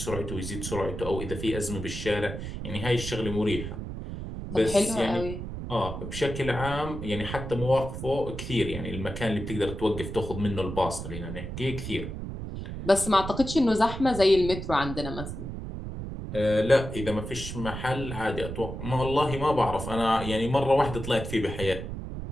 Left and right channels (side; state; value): right; noise; rumble, 7 dB below the sound